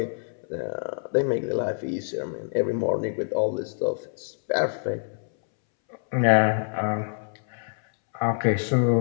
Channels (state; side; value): silent; right; 61 dB below the other